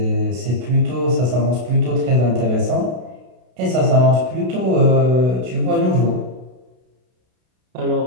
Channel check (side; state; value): left; late; 32 ms